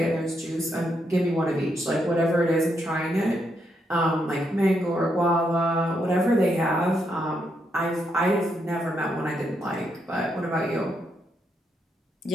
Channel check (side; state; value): both; normal; correlation 0.79